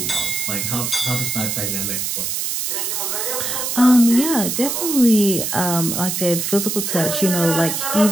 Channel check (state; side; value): noise; right; hiss, 2 dB below the sound